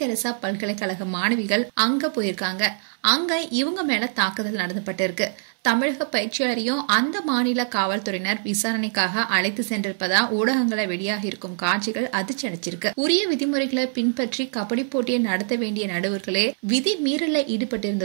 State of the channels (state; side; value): silent; left; 63 dB below the other